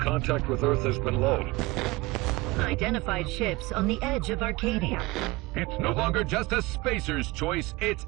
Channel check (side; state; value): left; quieter; 22.1 dB